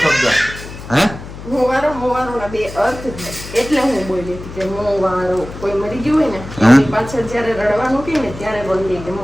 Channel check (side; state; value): left; noise; hum, 13 dB below the sound